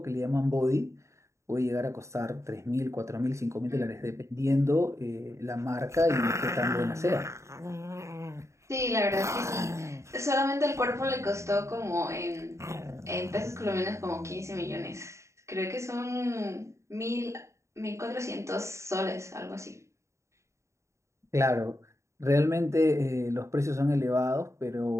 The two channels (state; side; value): late; left; 0.14 ms